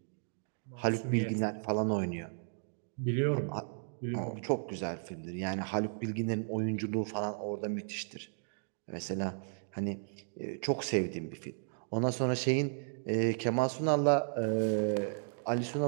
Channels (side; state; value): left; silent; digital silence